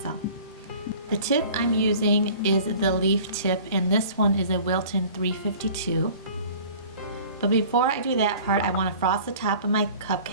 The tip I'm using is the leaf tip, and this one is a Wilton 352. But before I do that part, I want to frost the top of my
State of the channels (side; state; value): both; inverted; correlation -0.46